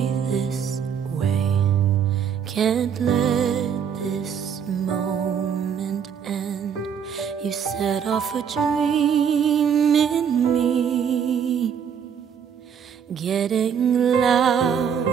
this way. Can't let this moment end. You set off a dream in me, getting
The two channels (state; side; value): quieter; left; 7.6 dB